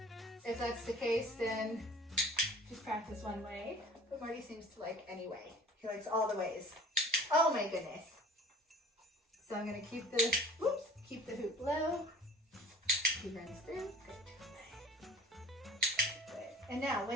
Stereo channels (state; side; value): normal; both; correlation 0.46